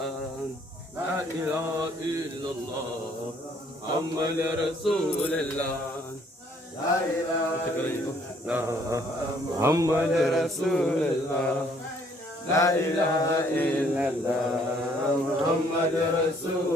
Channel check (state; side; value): normal; both; correlation 0.63